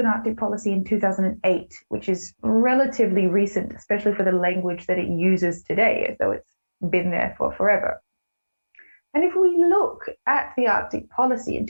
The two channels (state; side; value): inverted; both; correlation -1.00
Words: Arctic policy in 2008, which is relatively recent, especially for the language that it uses today, as though it's been there for forever. And if we look at the Arctic policy in